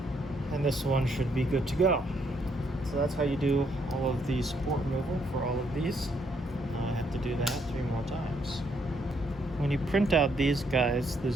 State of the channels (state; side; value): normal; both; correlation 0.72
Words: And this one should be good to go. So that's how you do all of the support removal for all of these. I have to do that 3 more times. When you print out these guys, the